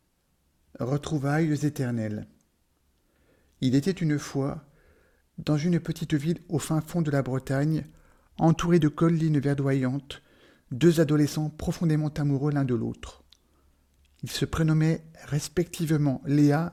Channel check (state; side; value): identical; both; correlation 1.00